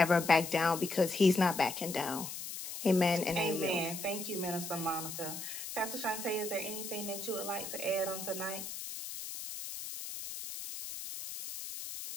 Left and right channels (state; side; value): noise; left; hiss, 8 dB below the sound